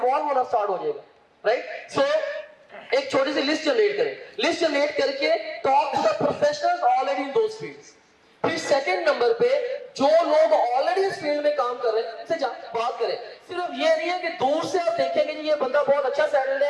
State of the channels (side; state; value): both; identical; correlation 1.00